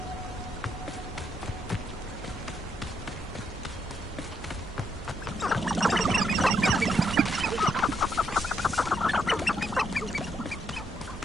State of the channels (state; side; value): noise; right; hum, 16 dB below the sound